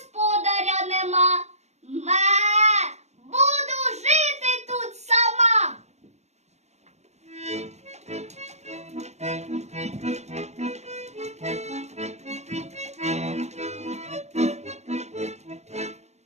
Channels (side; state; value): left; late; 0.32 ms